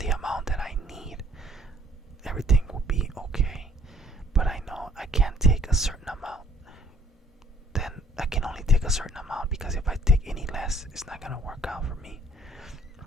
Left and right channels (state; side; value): normal; both; correlation 0.60